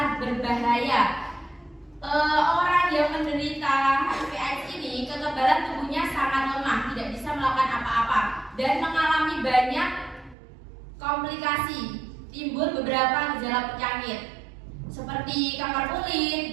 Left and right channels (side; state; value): left; drops out; at 10.4 s